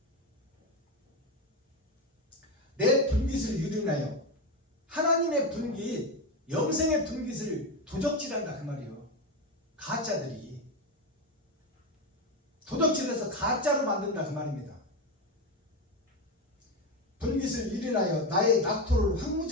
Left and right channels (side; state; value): both; normal; correlation 0.15